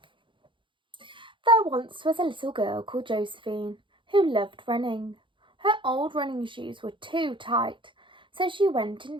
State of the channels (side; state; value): left; late; 0.24 ms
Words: There once was a little girl called Josephine who loved running. Her old running shoes were too tight, so she went